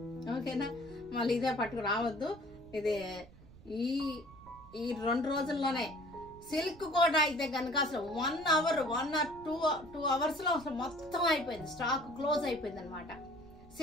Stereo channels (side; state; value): right; noise; rumble, 21 dB below the sound